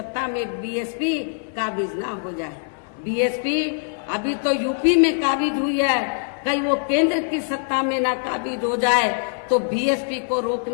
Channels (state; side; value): silent; right; digital silence